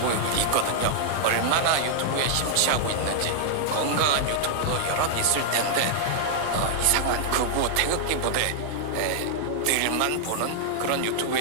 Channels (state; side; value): different; both; correlation -0.01